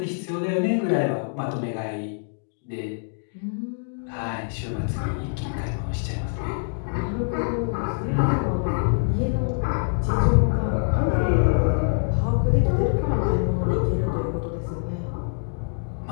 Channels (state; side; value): silent; right; digital silence